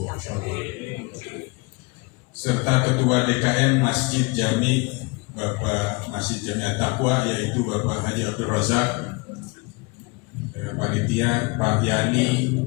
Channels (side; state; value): right; quieter; 27.8 dB